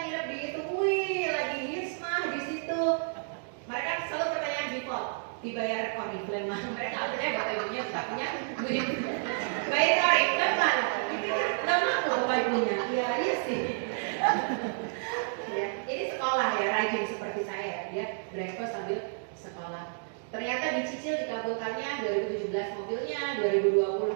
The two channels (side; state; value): left; silent; digital silence